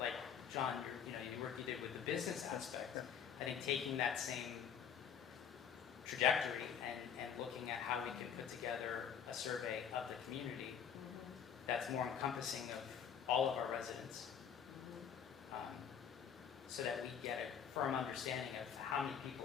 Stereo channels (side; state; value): right; quieter; 8.0 dB